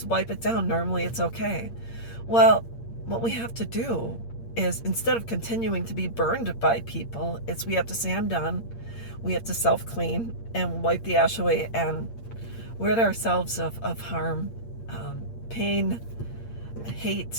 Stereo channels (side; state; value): right; late; 8.6 ms